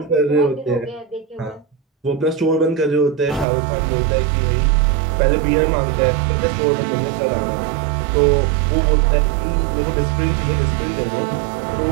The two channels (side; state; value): left; drops out; at 3.5 s